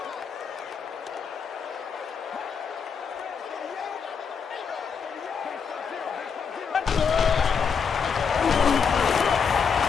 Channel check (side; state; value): right; quieter; 6.3 dB